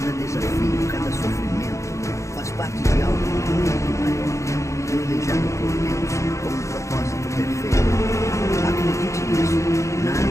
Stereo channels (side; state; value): right; late; 0.15 ms